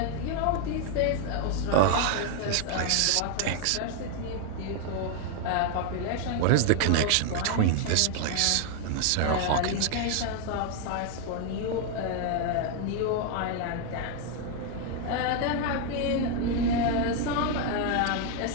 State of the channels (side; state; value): both; different; correlation 0.00